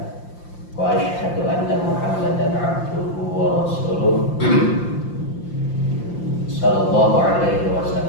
wa asyhadu anna Muhammadan abduhu wa rasuluh sallallahu alaihi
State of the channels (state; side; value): late; right; 5.8 ms